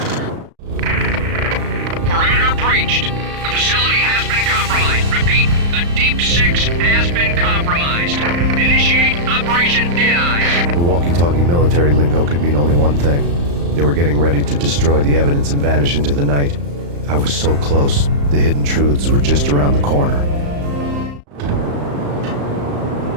Perimeter breached. The facility has been compromised. Repeat, the Deep Six has been compromised. Initiate Operation Dead Eyes. The walkie-talkie military lingo could mean only one thing. They were getting ready to destroy the evidence and vanish into the night. I was so close. The hidden truths were just around the corner.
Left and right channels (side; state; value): left; late; 35 ms